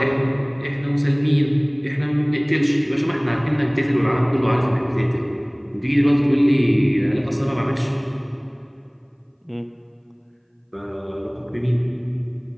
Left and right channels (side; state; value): both; identical; correlation 1.00